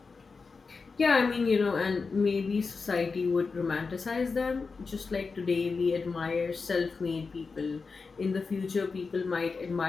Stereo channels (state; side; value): quieter; right; 4.6 dB